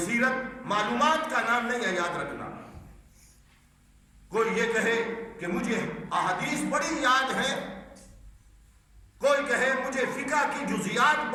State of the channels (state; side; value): identical; both; correlation 1.00